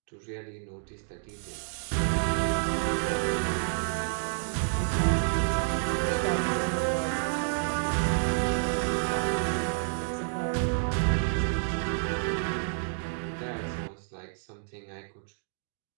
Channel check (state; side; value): silent; left; digital silence